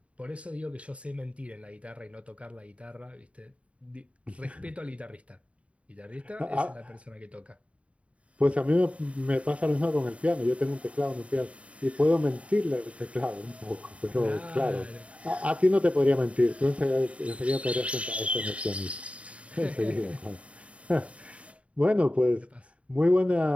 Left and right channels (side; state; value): left; late; 0.063 ms